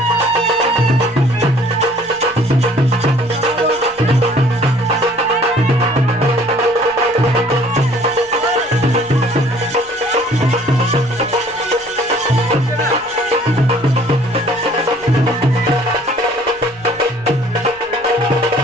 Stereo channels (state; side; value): noise; left; rumble, 27 dB below the sound